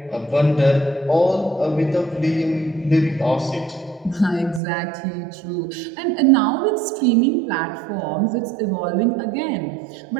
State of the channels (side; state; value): left; drops out; at 4.6 s